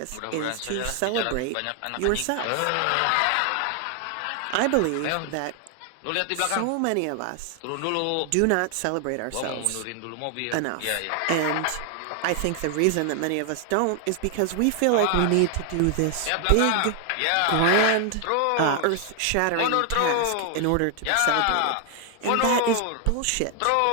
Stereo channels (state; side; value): different; both; correlation 0.00